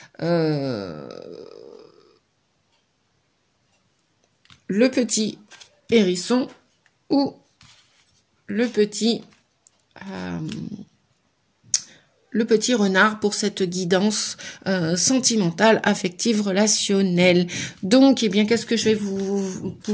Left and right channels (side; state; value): both; identical; correlation 1.00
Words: le petit hérisson ou le petit renard pour cette guidance sentimentale, affective, relationnelle. Donc, eh bien, qu'est-ce que je vais